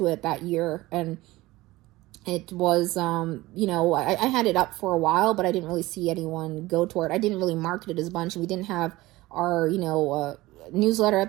it that year. And it was, I had it up for a while, but I didn't really see anyone go toward it. I didn't really market it as a bunch. We didn't have our, newsletter at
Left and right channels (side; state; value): left; quieter; 19.0 dB